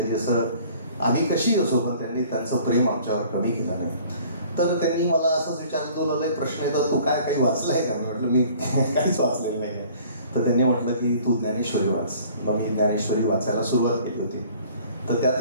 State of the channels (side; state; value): both; inverted; correlation -0.52